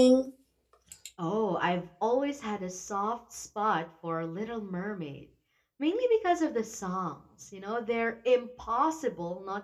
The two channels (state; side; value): identical; both; correlation 1.00